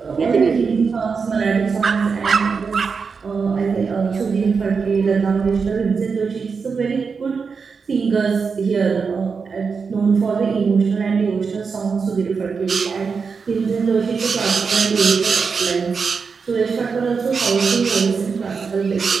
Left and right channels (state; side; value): quieter; left; 5.3 dB